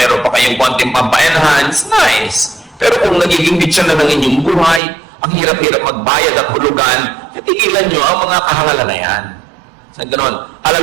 pa kayong konting pampa-enhance, nice. Pero kung nagiging bitsa na ng inyong buhay, ang hirap-hirap magbayad at hulugan, titigilan nyo ang mga kahangalan na yan. Sa ganon, alam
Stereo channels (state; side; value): drops out; left; at 4.8 s